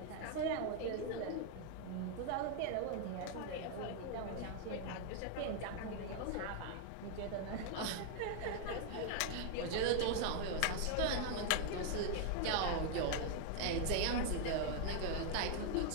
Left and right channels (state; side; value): different; both; correlation 0.00